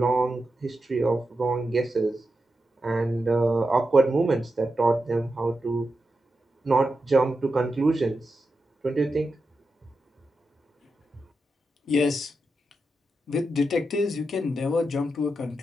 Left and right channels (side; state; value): both; normal; correlation 0.89